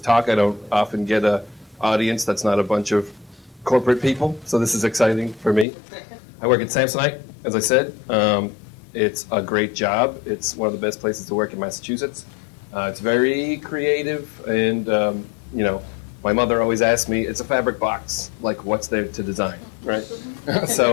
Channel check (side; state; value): right; drops out; at 5.7 s